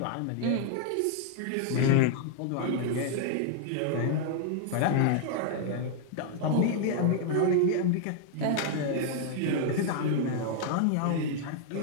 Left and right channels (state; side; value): different; both; correlation 0.00